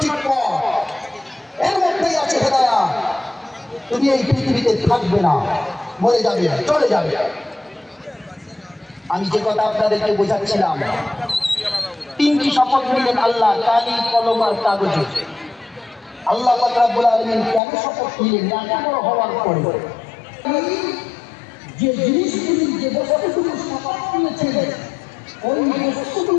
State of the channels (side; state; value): right; drops out; at 17.6 s